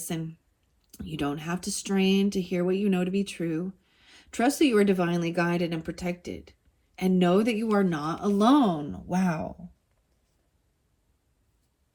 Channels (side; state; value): both; identical; correlation 1.00